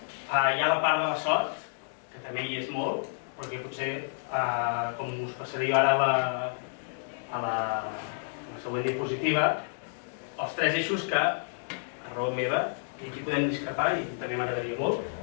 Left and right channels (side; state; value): right; silent; digital silence